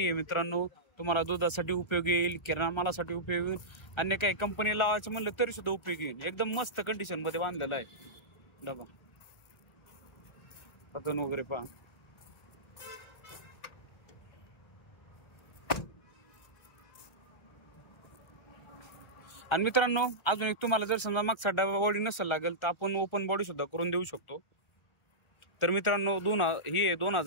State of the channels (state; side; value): late; right; 1.3 ms